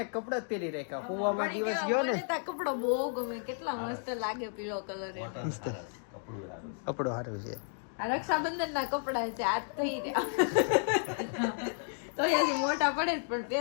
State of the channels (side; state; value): right; silent; 56 dB below the other